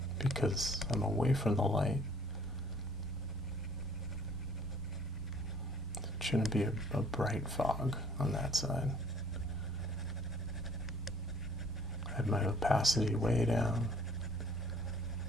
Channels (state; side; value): normal; both; correlation 0.57